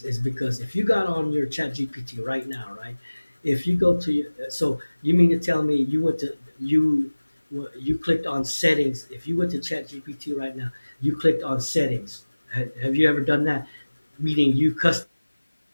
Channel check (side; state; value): both; inverted; correlation -1.00